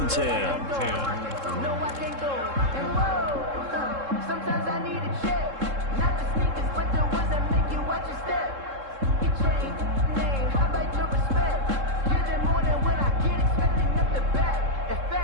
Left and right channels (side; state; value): left; late; 3.7 ms